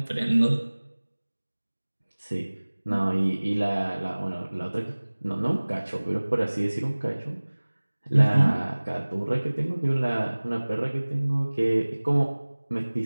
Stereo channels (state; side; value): inverted; both; correlation -1.00